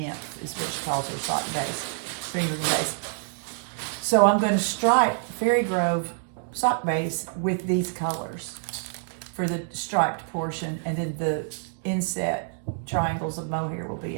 is what she calls her sock base, string base. So I'm going to stripe Fairy Grove sock base with these colors for the striped portion, and then the inset triangles of mohair will be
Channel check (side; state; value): left; silent; 60 dB below the other